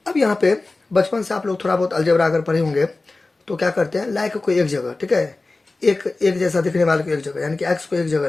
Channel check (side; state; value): right; quieter; 3.3 dB